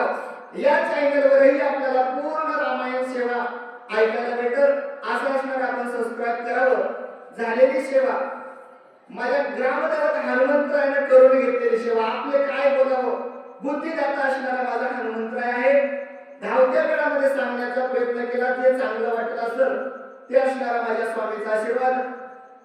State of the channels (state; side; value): identical; both; correlation 1.00